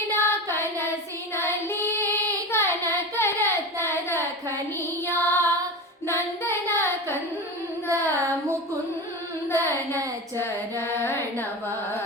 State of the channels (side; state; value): both; normal; correlation 0.26